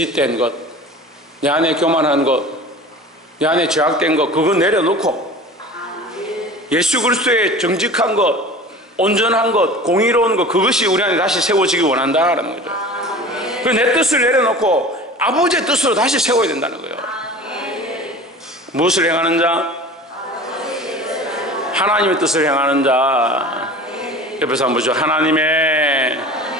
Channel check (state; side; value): normal; both; correlation 0.39